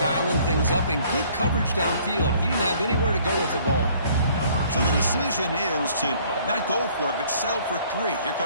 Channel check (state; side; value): inverted; both; correlation -0.58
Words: things up and good coverage downfield. He didn't have anywhere to go with the ball. So the decision is to not go for it, but settle for 3. Here